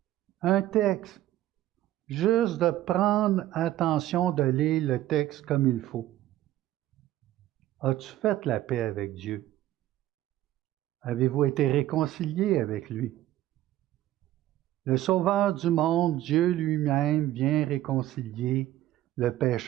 Un texte. Juste de prendre attention de lire le texte comme il faut. As-tu fait la paix avec Dieu? Avez-vous été réconcilié avec lui? Le Sauveur du monde, Dieu lui-même, vient réconcilier le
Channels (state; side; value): quieter; left; 14.2 dB